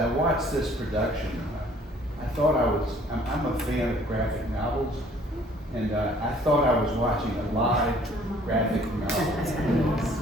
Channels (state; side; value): normal; both; correlation 0.57